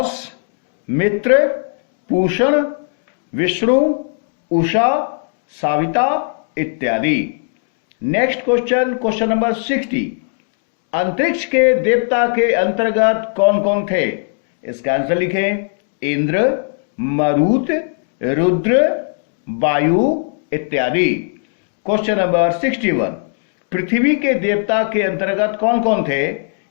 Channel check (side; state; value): right; silent; 62 dB below the other